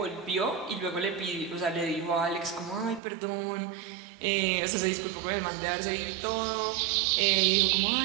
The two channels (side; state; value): left; drops out; at 3.0 s